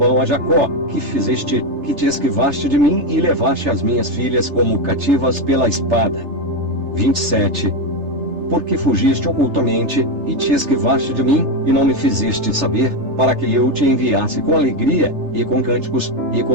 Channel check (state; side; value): late; left; 3.3 ms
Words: a Jacó: que fizeste, que te esquivaste de mim e levaste as minhas filhas como cativas pela espada. 27. Porque fugiste ocultamente, e te esquivaste de mim, e não me fizeste saber, para que eu te enviasse com alegria, e com cânticos, e